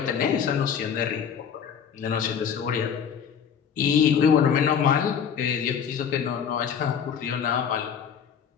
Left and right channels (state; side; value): quieter; right; 7.7 dB